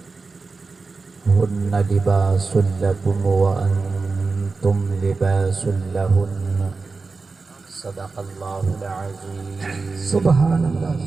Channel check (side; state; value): left; quieter; 4.1 dB